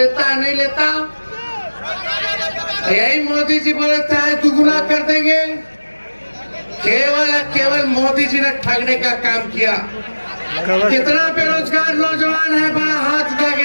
है नहीं लेता? यही मोदी जी बोले थे दुगुना कर देंगे। केवल मोदी जी ने ठगने का काम किया। कितना बेरोजगार नौजवान है, बड़ा हाथ उठा के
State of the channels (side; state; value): both; inverted; correlation -1.00